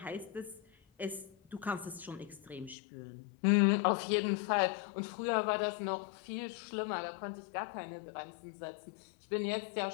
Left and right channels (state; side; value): drops out; right; at 2.8 s